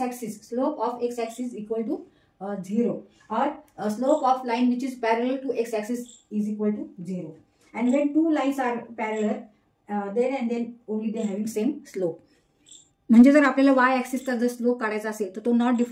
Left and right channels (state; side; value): identical; both; correlation 1.00